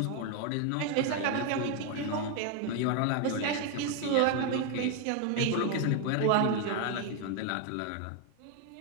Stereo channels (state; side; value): different; both; correlation 0.01